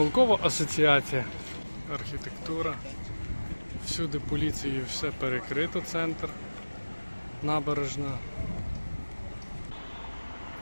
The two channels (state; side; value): inverted; both; correlation -1.00